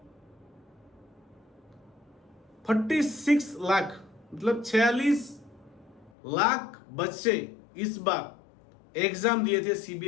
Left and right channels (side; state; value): right; drops out; at 6.1 s